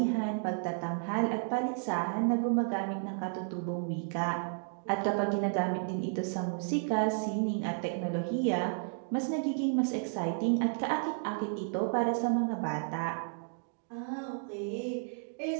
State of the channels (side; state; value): left; silent; digital silence